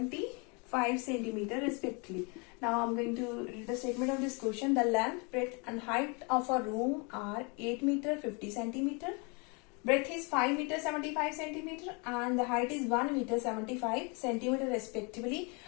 centimeter respectively. Now I am going to read the statement of this question. The length, breadth and height of a room are 8 meter 50 centimeter. Breadth is 5 meter 75 centimeter and the height is 1 meter 75 centimeter respectively.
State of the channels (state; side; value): quieter; right; 31.9 dB